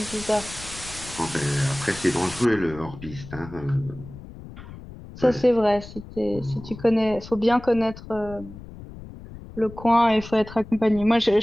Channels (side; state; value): left; noise; rumble, 15 dB below the sound